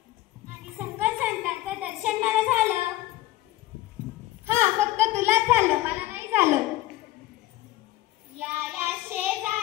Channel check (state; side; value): quieter; right; 16.0 dB